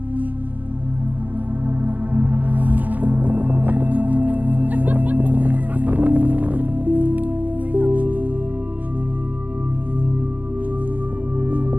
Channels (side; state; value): left; late; 0.082 ms